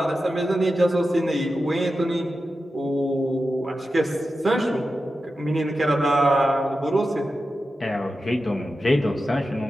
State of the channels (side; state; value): both; normal; correlation 0.91